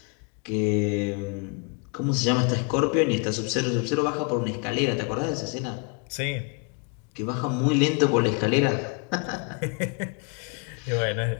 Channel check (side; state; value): right; quieter; 34.2 dB